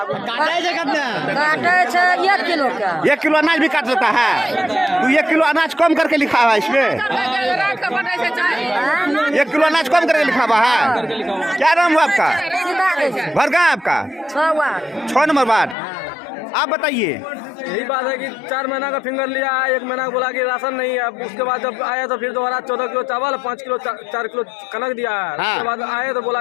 काटे छै 1 किलो का। 1 किलो अनाज भी काट लेता है। तो 1 किलो अनाज कम करके लिखा हुआ है इसमें। 1 किलो अनाज कम करके लिखा हुआ है। क्या नाम हुआ आपका? घर कहाँ है आपका? 6 नंबर वार्ड। आप बताइए। यही बात है कि 4 महीना का फिंगर लिया है। 1 महीना बोला कि राशन नहीं है। उसके बाद जब आया तो फिर दोबारा 14 किलो चावल 5 किलो 4 किलो कनक दिया है। हाँ। उसके बाद आए तो बोला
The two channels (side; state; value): right; drops out; at 15.8 s